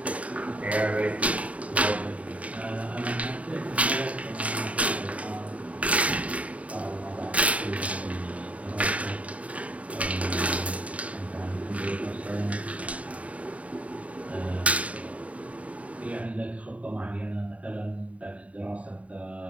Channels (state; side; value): late; left; 0.067 ms